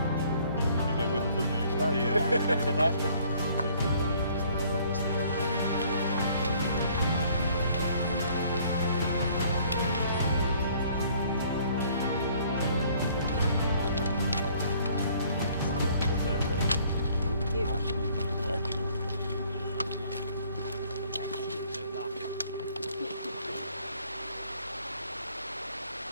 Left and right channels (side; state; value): both; inverted; correlation -0.59